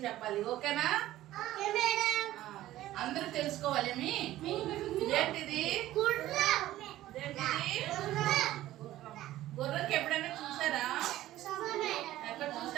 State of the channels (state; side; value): quieter; left; 14.7 dB